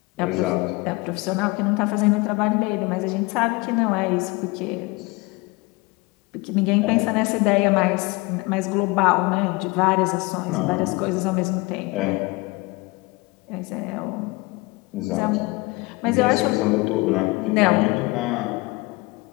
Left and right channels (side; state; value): right; quieter; 24.3 dB